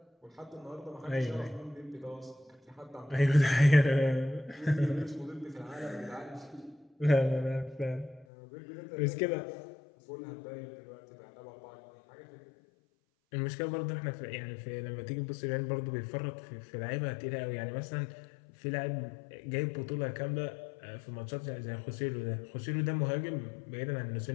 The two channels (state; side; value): drops out; right; at 8.2 s